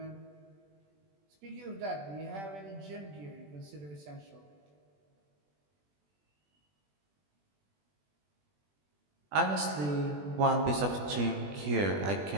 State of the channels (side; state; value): left; late; 20 ms